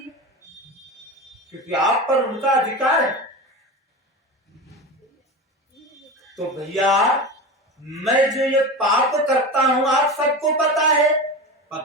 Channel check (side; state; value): both; normal; correlation 0.26